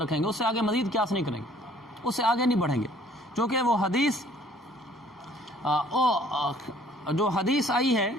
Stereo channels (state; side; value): normal; both; correlation 0.57